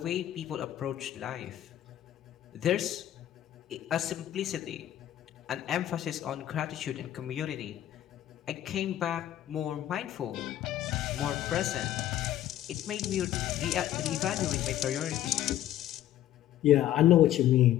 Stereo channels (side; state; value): right; quieter; 12.4 dB